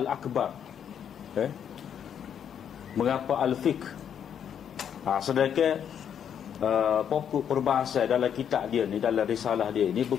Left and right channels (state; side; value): quieter; right; 8.6 dB